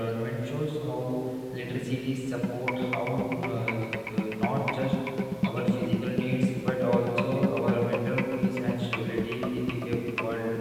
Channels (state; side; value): identical; both; correlation 1.00